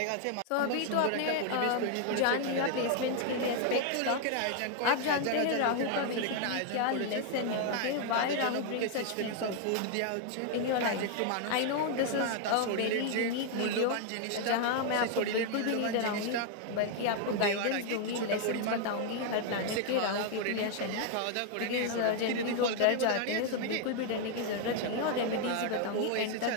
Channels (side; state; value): both; different; correlation 0.00